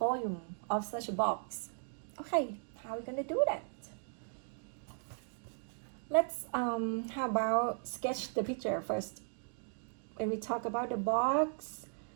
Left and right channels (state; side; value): silent; left; 53 dB below the other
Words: of such a box. Okay, how are we gonna do that? Let's how about sketch the picture first. When we talk about the box,